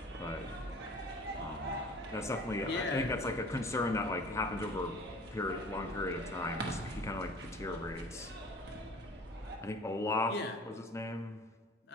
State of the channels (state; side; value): normal; both; correlation 0.46